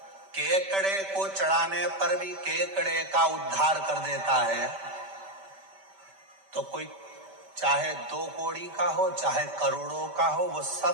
केकड़े को चढ़ाने पर भी केकड़े का उद्धार कर देता है, तो कोई चाहे 2 कौड़ी का हो चाहे करोड़ों का हो, वो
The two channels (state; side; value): late; left; 5.1 ms